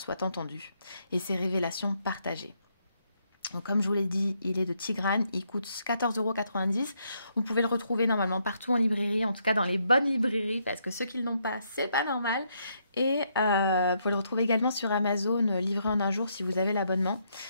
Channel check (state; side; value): inverted; both; correlation -0.75